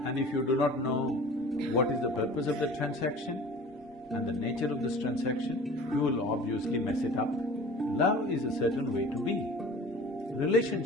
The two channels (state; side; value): normal; both; correlation 0.42